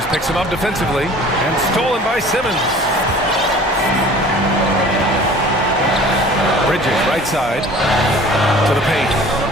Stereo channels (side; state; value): both; normal; correlation 0.46